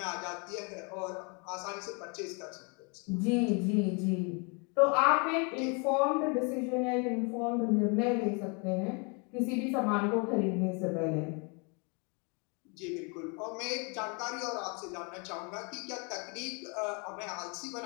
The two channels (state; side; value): quieter; right; 33.9 dB